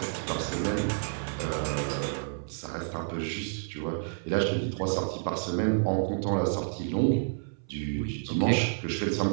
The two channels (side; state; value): left; silent; 58 dB below the other